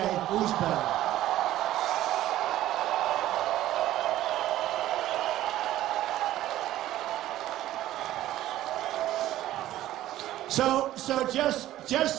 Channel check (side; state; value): left; quieter; 14.1 dB